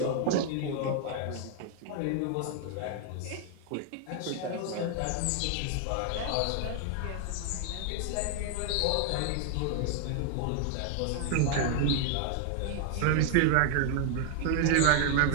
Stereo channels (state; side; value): different; both; correlation 0.00